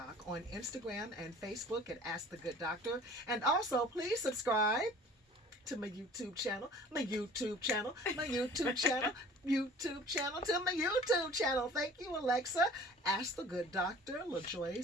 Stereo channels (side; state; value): both; normal; correlation 0.47